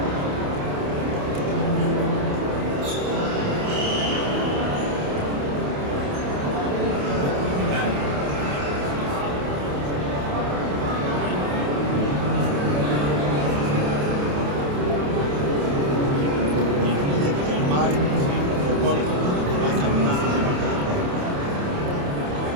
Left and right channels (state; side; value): late; left; 28 ms